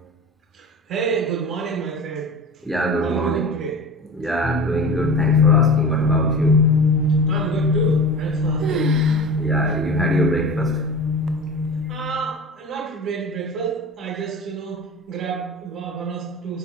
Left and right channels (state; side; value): normal; both; correlation 0.34